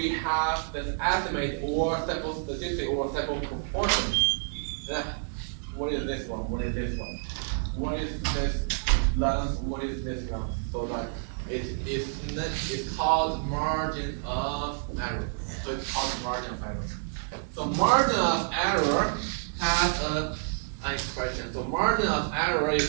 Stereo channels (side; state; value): left; silent; digital silence